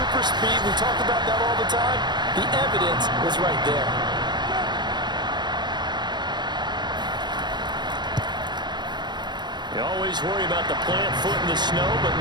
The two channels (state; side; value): late; left; 0.21 ms